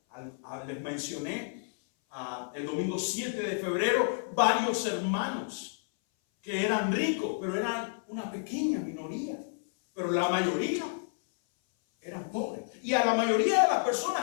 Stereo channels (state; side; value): silent; right; 57 dB below the other